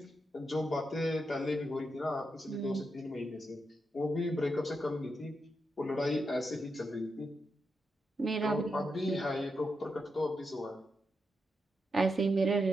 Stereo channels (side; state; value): both; normal; correlation 0.85